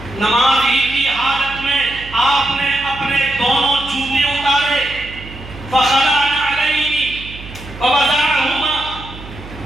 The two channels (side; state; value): right; noise; hum, 15 dB below the sound